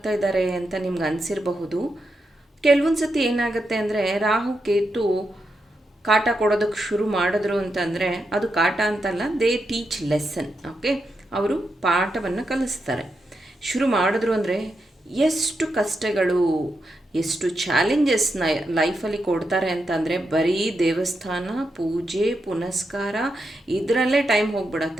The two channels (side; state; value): both; normal; correlation 0.85